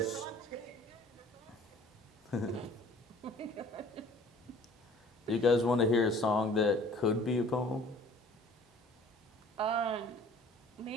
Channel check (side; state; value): both; normal; correlation 0.51